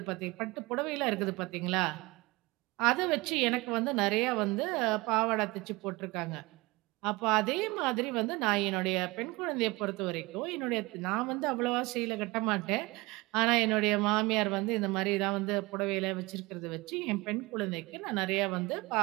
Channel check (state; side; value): quieter; left; 22.8 dB